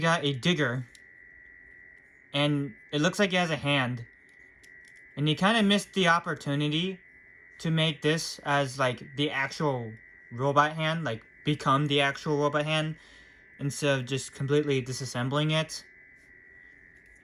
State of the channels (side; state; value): both; identical; correlation 1.00